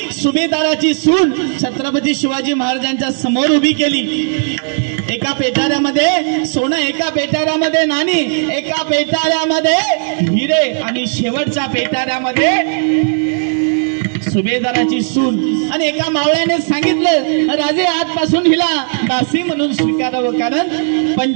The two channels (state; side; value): silent; left; 68 dB below the other